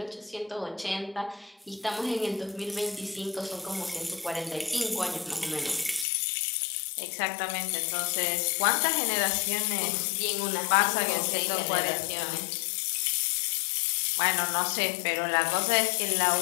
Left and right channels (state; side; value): drops out; right; at 6.1 s